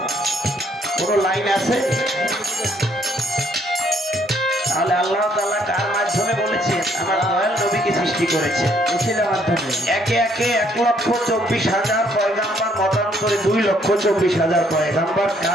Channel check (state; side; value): normal; both; correlation 0.67